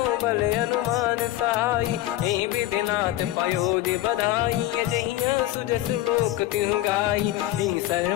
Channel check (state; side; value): quieter; right; 14.9 dB